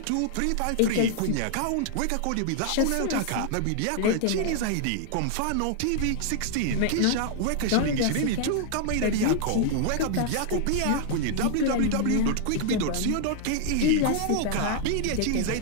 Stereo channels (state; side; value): different; both; correlation -0.01